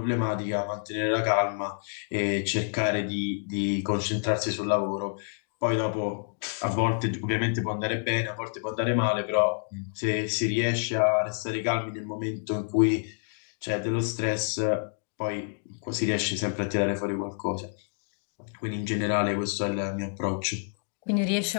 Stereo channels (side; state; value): right; silent; digital silence